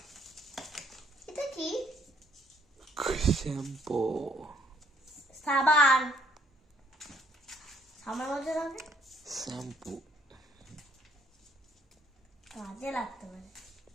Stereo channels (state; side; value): normal; both; correlation 0.64